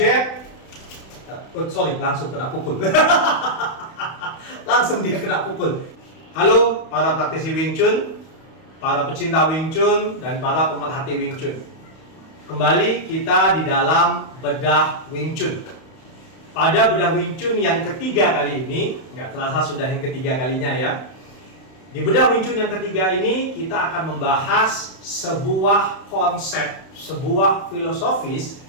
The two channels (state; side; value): late; right; 31 ms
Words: langsung kena pukul. Langsung dia kena pukul. Halo para praktisi Wing Chun, para pecinta Wing Chun, dan para pemerhati Wing Chun. Kembali kita di dalam bedah Wing Chun. Pada bedah Wing Chun yang ketiga kali ini, nggak terasa sudah yang ketiga kalinya ya. Di bedah Wing Chun yang ketiga ini, kita akan membahas sebuah konsep, sebuah filosofis